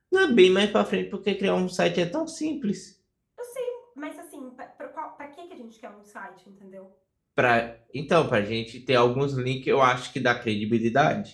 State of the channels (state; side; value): identical; both; correlation 1.00